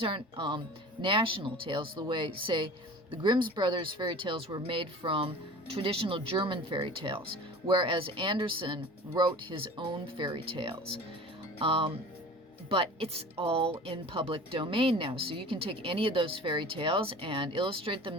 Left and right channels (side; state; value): both; normal; correlation 0.40